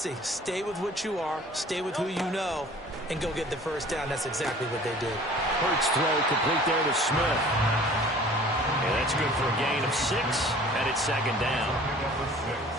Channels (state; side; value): normal; both; correlation 0.48